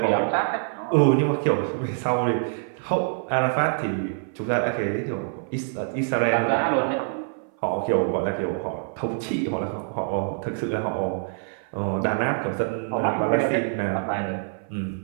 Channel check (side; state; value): left; silent; 57 dB below the other